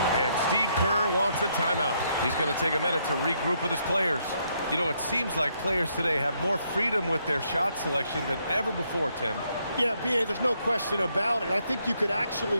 and Steve Kerr wants a timeout. He's going to take a minute to regroup with his players. You know, it seems like players today have more freedom with their shot selection than ever before, Tim. Yeah, B.A., there's no question about it. I think you could actually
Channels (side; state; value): both; inverted; correlation -0.74